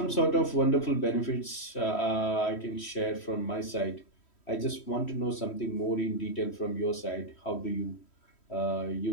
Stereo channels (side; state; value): right; late; 3.1 ms